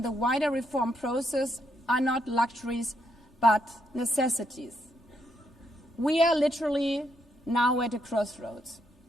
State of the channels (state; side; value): normal; both; correlation 0.77